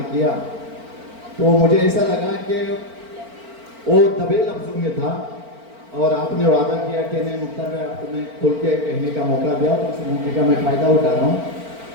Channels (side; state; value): left; late; 4.4 ms